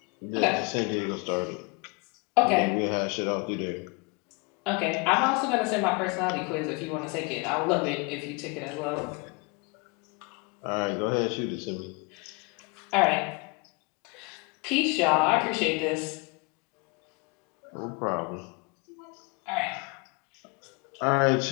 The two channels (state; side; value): quieter; right; 29.8 dB